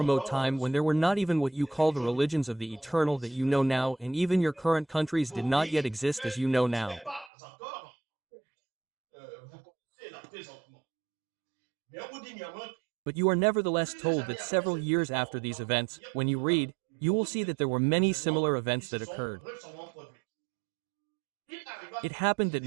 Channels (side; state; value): left; drops out; at 7.3 s